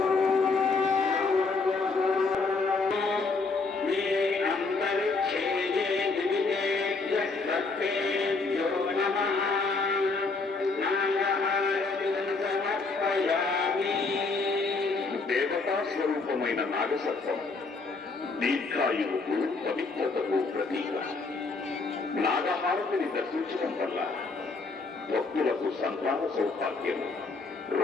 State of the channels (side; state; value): right; quieter; 4.0 dB